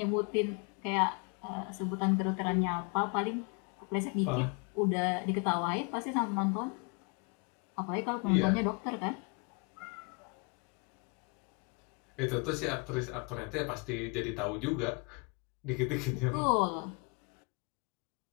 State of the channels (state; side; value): quieter; right; 33.4 dB